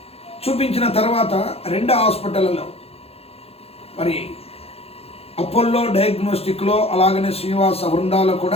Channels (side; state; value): right; late; 0.29 ms